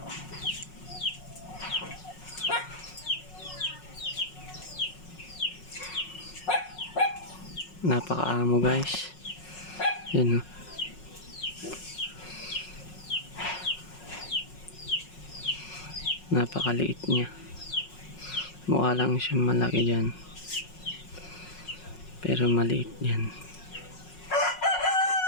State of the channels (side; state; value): right; late; 5.5 ms